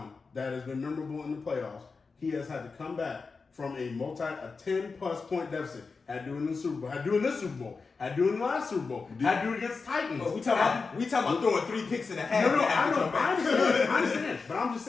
that has been memorable in the playoffs, he has had to come back from a 10+ point deficit. Had to do it in the Super Bowl. Had to do it in this Super Bowl. Had to do it in the last Super Bowl. Had to do it against Titans. We talking about throwing 3 picks and a half. No, I after know. come back. I understand. But I'm just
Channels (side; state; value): right; quieter; 4.5 dB